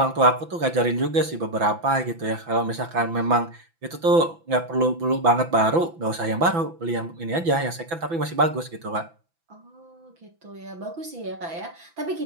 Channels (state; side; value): late; left; 6.0 ms